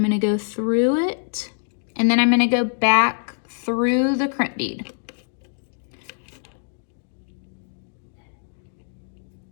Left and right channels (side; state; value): right; silent; digital silence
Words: gonna go through it, and then I'm gonna go back through the crimp bead.